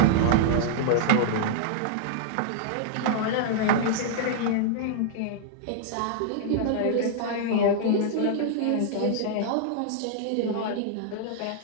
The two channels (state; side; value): different; both; correlation -0.01